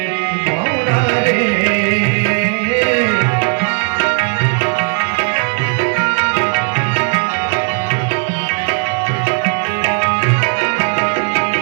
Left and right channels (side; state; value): left; quieter; 39.5 dB